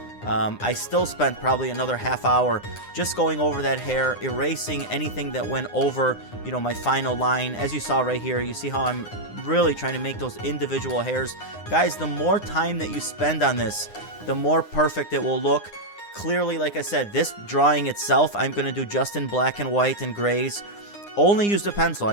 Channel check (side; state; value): right; late; 9.8 ms